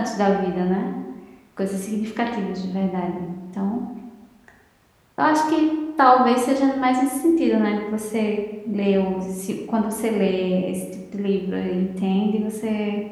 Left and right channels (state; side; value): identical; both; correlation 1.00